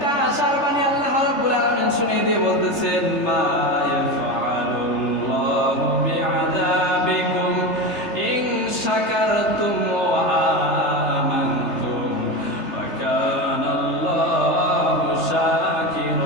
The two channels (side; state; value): right; late; 3.3 ms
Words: আশার বাণী আল্লাহ রাব্বুল আলামিন শুনিয়ে দিয়ে বলতেছেন, মা ইয়াফআলুল্লাহু বিআযাবিকুম ইন শাকারতুম ওয়া আমানতুম ওয়া কানাল্লাহু